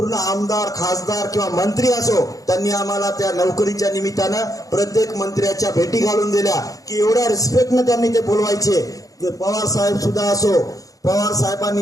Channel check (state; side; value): late; right; 0.17 ms